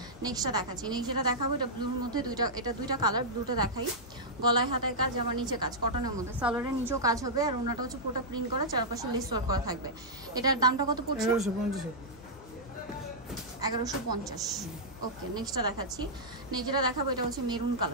নেক্সটটা দেখাচ্ছি। নেক্সট যেটা দেখাবো, এটা ব্লুর মধ্যে, দুইটা কালার, ব্লুটা দেখাই। গলায় হাতায় কাজ, আমার নিচে কাজ, কটনের মধ্যে, সালোয়ারের নিচেও কাজ হবে আর ওনাটা হচ্ছে পুরোটা প্রিন্ট করা, চারপাশে লেস ওয়ার্ক করা থাকবে। এটার দামটা কত পড়ছে? 1150। 1150। ওকে, নেক্সটটা দেখাচ্ছি। নেক্সট যেটা দেখাবো, এটা হচ্ছে মেরুন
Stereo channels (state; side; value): normal; both; correlation -0.10